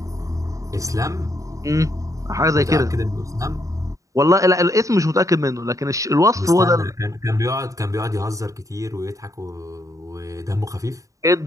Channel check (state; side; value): late; left; 0.16 ms